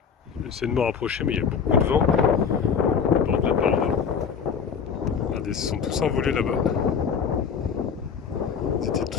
J'essaie de me rapprocher, mais il y a beaucoup de vent au bord de la paroi. Regardez, ils se sont tous envolés là-bas. Ils étaient tous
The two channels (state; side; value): quieter; right; 6.6 dB